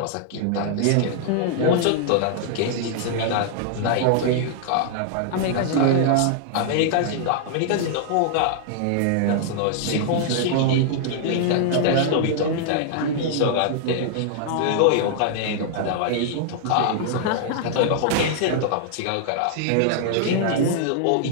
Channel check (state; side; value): different; both; correlation -0.01